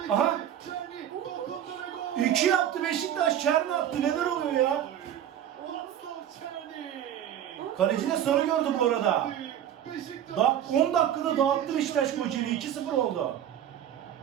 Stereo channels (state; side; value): quieter; left; 10.4 dB